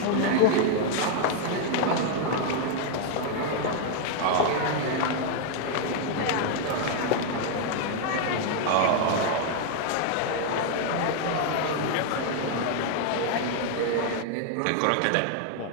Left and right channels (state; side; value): different; both; correlation 0.00